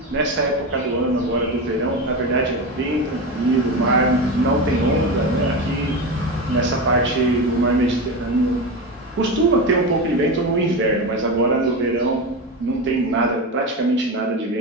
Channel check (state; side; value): normal; both; correlation 0.20